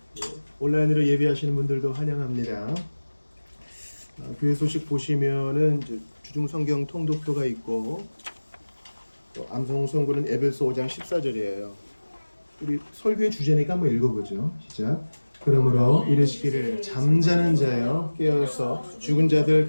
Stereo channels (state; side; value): inverted; both; correlation -1.00